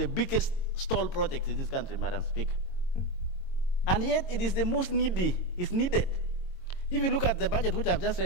biggest stall project in this country, Madam Speaker. And yet, it is the most needy, it's needed. If you look at the budget, which I've just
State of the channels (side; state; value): right; late; 22 ms